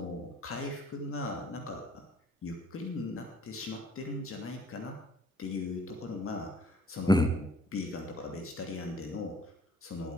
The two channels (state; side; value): normal; both; correlation 0.59